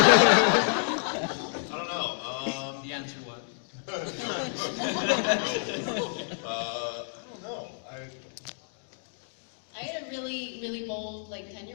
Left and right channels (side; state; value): right; silent; digital silence